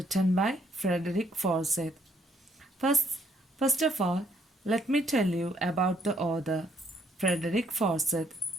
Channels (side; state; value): both; normal; correlation 0.69